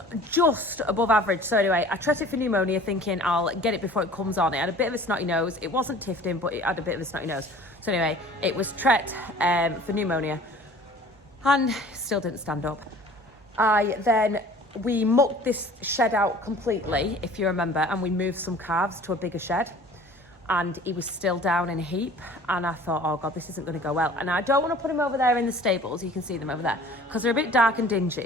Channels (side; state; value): both; normal; correlation 0.47